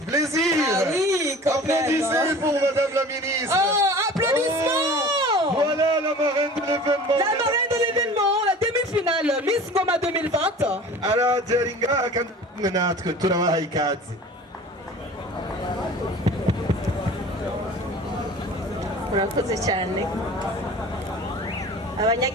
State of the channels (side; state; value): both; normal; correlation 0.42